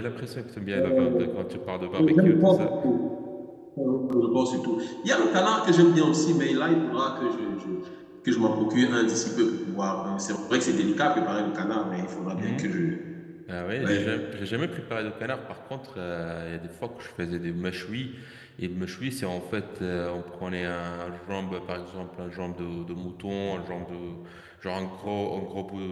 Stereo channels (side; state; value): both; identical; correlation 1.00